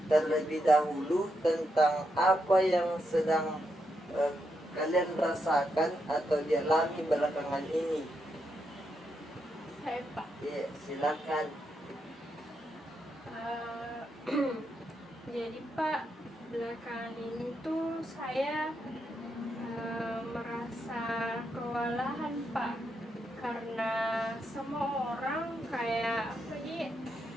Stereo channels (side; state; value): both; normal; correlation 0.82